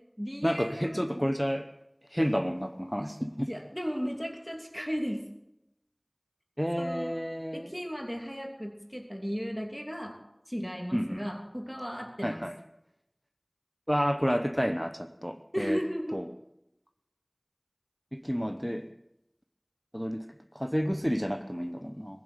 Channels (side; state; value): both; identical; correlation 1.00